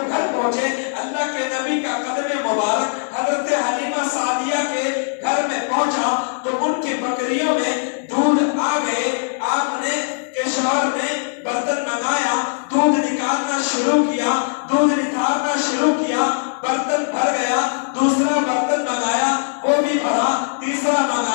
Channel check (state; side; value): silent; right; digital silence